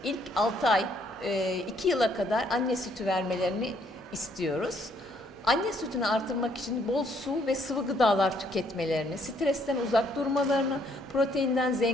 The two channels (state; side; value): normal; both; correlation 0.68